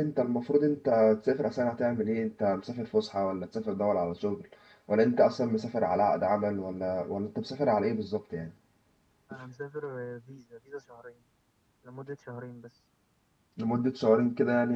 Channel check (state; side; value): identical; both; correlation 1.00